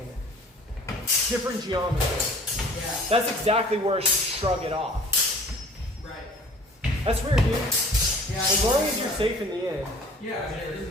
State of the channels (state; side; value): normal; both; correlation 0.49